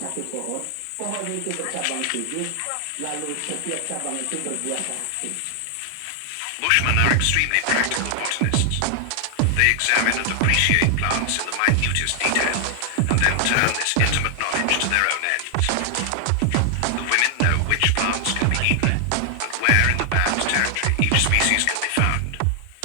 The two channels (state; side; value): different; both; correlation 0.00